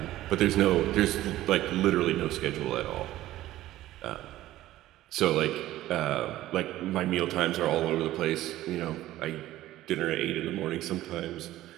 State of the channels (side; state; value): left; quieter; 15.0 dB